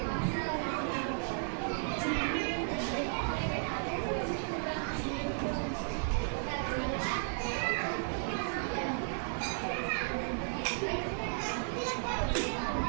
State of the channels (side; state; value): left; silent; digital silence